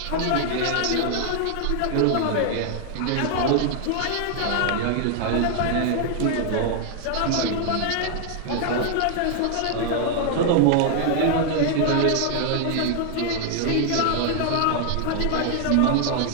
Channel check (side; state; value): both; different; correlation 0.00